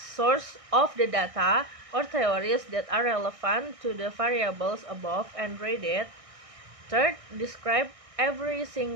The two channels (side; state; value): left; late; 1.6 ms